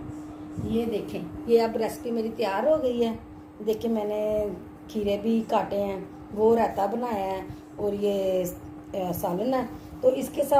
ये देखें, ये अब रेसिपी मेरी तैयार हो गई है। देखिए, मैंने खीरे भी काटे हैं, वो रायता बनाया है और ये सालन है। तो इसके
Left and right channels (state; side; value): identical; both; correlation 1.00